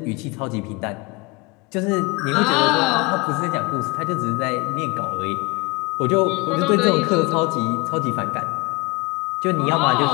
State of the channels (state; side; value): quieter; right; 25.0 dB